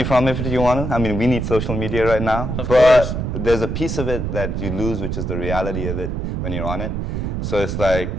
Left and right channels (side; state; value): right; noise; rumble, 2 dB below the sound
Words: from it if you want to. I mean, we need social media right now. Of course. There's a piece of it that you lose, which is the reality of it when you're on it. So it's like,